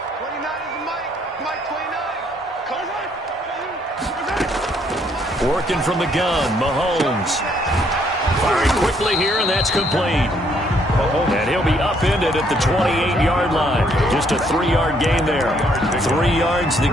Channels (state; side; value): normal; both; correlation 0.68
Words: Working from the gun, Mahomes. Firing quickly here, and that's complete. And he'll be upended at the 28-yard line. Just a 3-yard gain there. 3 yards the